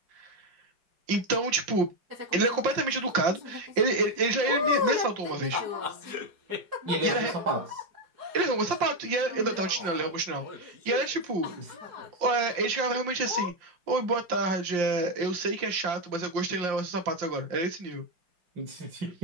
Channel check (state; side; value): late; left; 5.7 ms